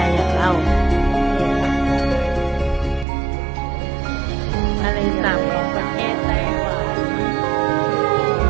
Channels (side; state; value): left; drops out; at 3.1 s